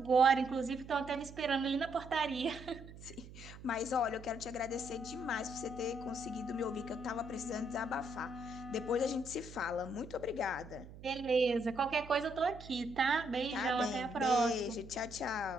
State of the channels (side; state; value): right; noise; hum, 16 dB below the sound